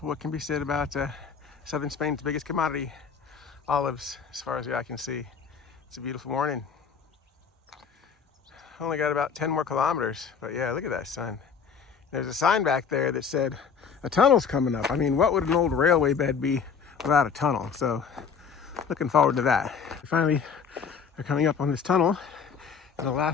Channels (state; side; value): quieter; right; 6.3 dB